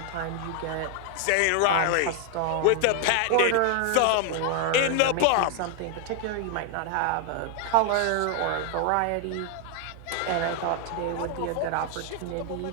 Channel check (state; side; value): different; both; correlation 0.00